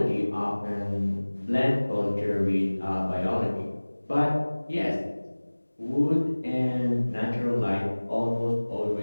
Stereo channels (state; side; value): inverted; both; correlation -1.00